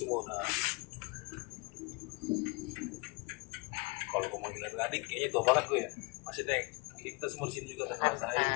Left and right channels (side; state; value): right; quieter; 27.4 dB